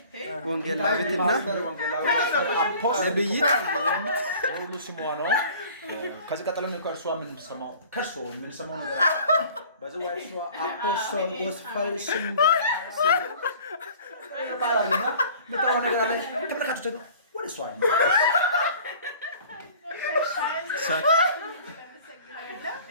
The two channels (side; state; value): both; inverted; correlation -0.48